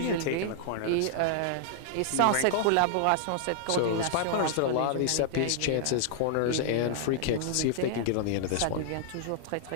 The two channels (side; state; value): both; different; correlation -0.01